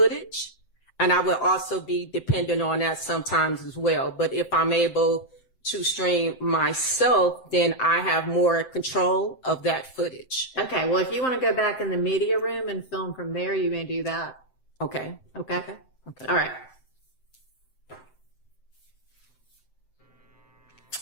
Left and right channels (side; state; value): right; late; 7.8 ms